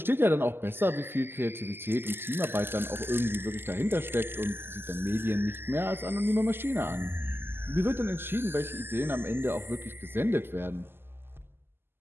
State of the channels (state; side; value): late; left; 0.11 ms